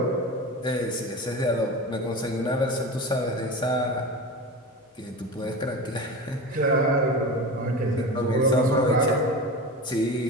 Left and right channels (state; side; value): normal; both; correlation 0.29